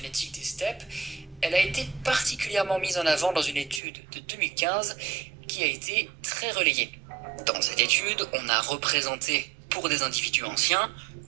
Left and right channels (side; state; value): left; drops out; at 3.8 s